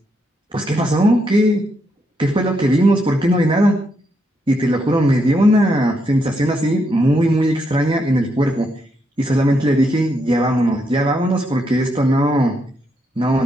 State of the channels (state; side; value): normal; both; correlation 0.79